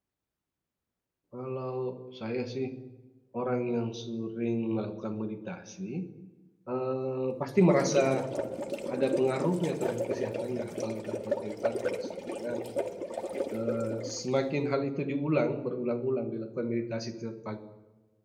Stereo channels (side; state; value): both; identical; correlation 1.00